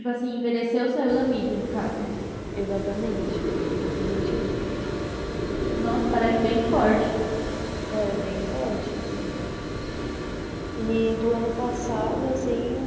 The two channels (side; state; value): both; identical; correlation 1.00